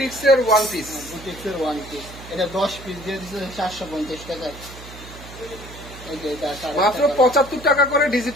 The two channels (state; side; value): noise; right; hum, 16 dB below the sound